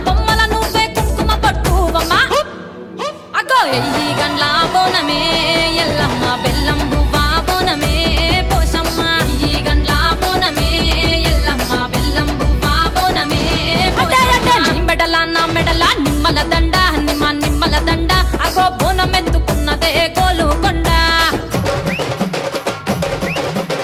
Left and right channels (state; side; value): identical; both; correlation 1.00